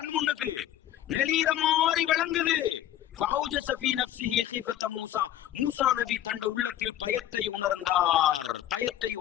முன்னுக்கு நெளிகிற மாதிரி விளங்குது. ஃபௌஜஸ ஃபீ நஃப்ஸிஹி ஹீஃபதம் மூசா. மூசா நபி தண்ட உள்ளத்தில் பயத்தை உணர்ந்தார். பயத்தை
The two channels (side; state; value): right; quieter; 12.2 dB